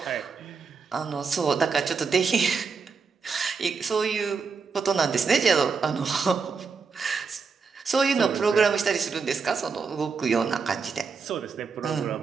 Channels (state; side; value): quieter; left; 5.2 dB